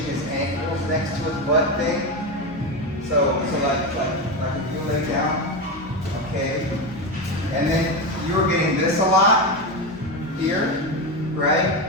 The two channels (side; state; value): both; normal; correlation 0.15